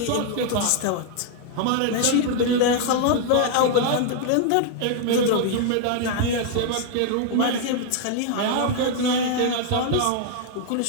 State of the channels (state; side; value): different; both; correlation 0.00